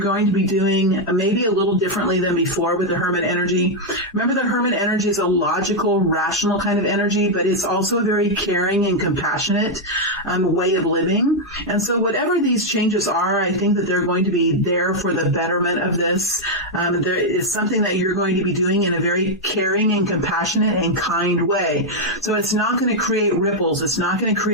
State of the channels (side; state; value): both; normal; correlation 0.00